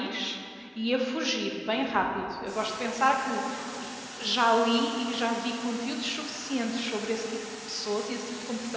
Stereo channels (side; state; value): both; identical; correlation 1.00